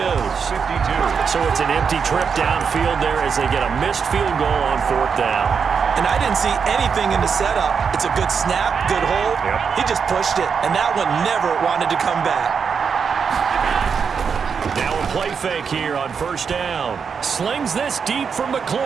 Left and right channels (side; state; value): left; quieter; 6.2 dB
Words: 52. So it's an empty trip downfield there as they get a missed field goal on 4th down. And I didn't see anything in the setup. It's a good snap, good hold. He just pushed it, and that one never wanted to come back. Now a play fake here on 1st down. Slings this deep from